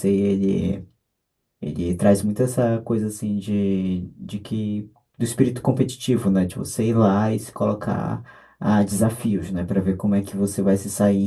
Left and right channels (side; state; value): both; identical; correlation 1.00